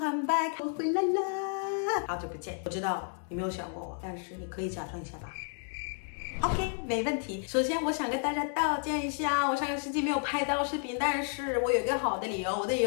back. 我回来了，好久不见。我知道你没有想过我，但是你可以假装一下吧。OK， 没问题。首先，我想跟大家道歉一下，我上个星期没有拍到视频，但是我有一个好的理由。我的理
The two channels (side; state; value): right; silent; 57 dB below the other